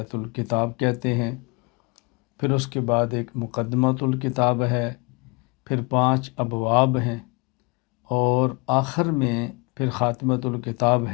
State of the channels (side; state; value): right; quieter; 29.0 dB